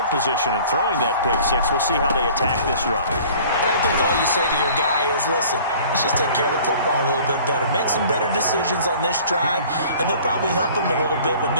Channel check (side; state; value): both; inverted; correlation -0.49